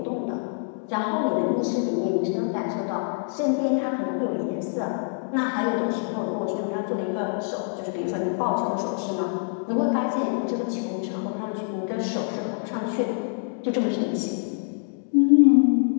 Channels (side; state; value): right; silent; 61 dB below the other